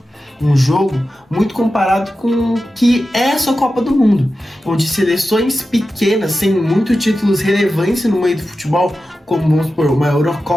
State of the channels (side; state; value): both; normal; correlation 0.92